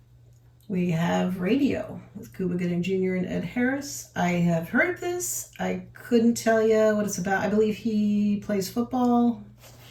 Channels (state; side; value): identical; both; correlation 1.00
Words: We have Radio with Cuba Gooding Jr. and Ed Harris. I have heard of this. I couldn't tell you what it's about. I believe he plays football.